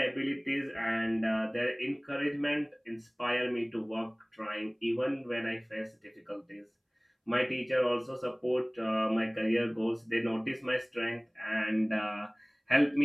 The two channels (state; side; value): identical; both; correlation 1.00